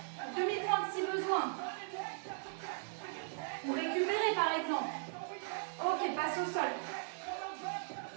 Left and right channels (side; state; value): left; silent; digital silence